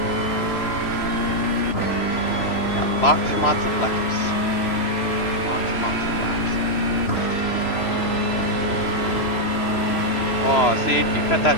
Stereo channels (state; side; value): late; right; 3.0 ms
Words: Got lots and lots of laps. Lots and lots of laps. Oh, see, if you cut